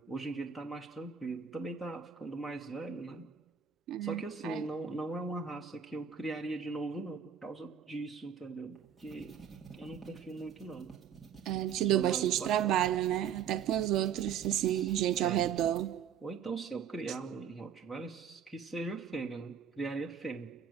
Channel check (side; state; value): left; quieter; 8.1 dB